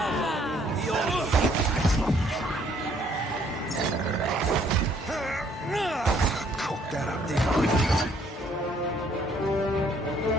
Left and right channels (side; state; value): both; normal; correlation 0.64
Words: Cook that up, there.